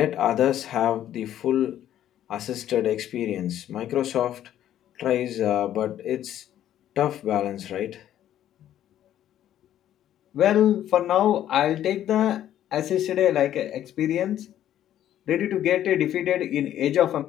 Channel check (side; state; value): right; quieter; 11.6 dB